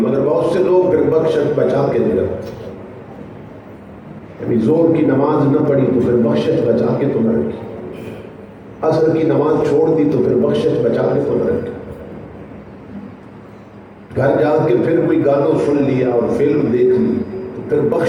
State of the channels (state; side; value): identical; both; correlation 1.00